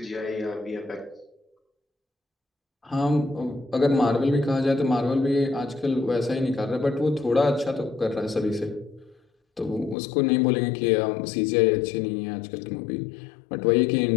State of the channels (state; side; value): drops out; right; at 10.0 s